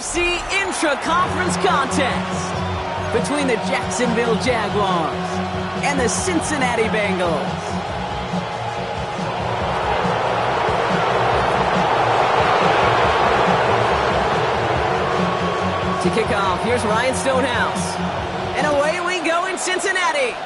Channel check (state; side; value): identical; both; correlation 1.00